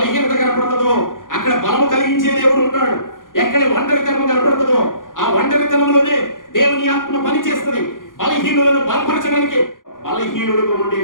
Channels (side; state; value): right; late; 0.89 ms